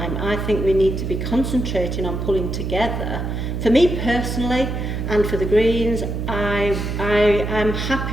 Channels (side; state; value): right; noise; hum, 3 dB below the sound